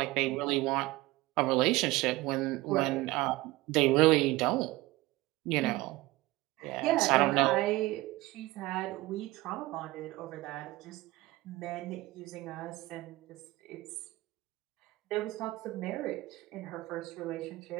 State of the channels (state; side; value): quieter; left; 19.5 dB